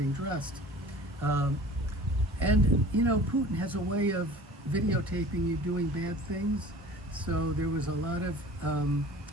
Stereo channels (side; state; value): both; normal; correlation 0.43